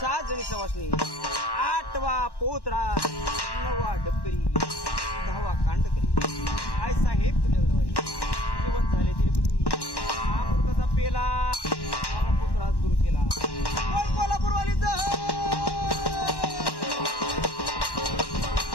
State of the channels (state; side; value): late; right; 1.1 ms